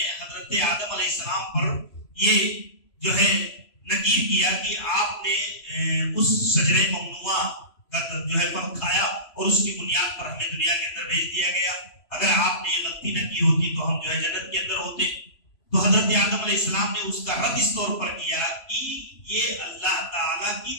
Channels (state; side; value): late; right; 3.0 ms